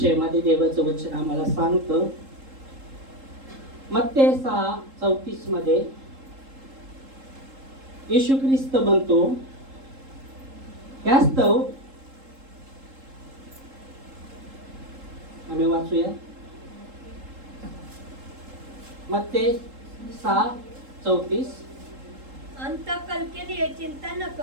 देवाचं वचन आम्हाला सांगतं मत्ते 6:34 मध्ये येशू ख्रिस्त म्हणतो, यास्तव आम्ही वाचूया मत्ते 6:34. अंतकल के लिए चिंता न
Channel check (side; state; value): left; late; 3.8 ms